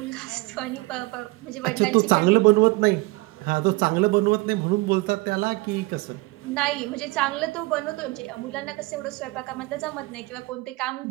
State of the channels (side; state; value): left; quieter; 22.8 dB